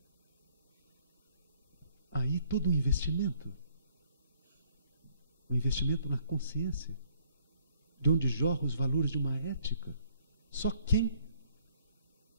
Aí todo o investimento na consciência, de onde jorram os valores de uma ética. Só quem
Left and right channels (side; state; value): both; inverted; correlation -0.64